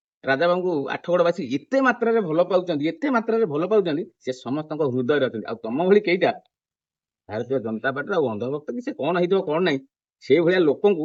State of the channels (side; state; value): both; identical; correlation 1.00